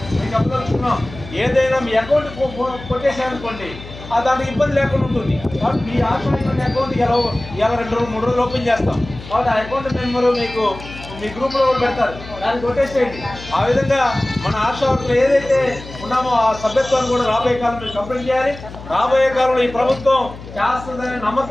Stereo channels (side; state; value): left; noise; hum, 15 dB below the sound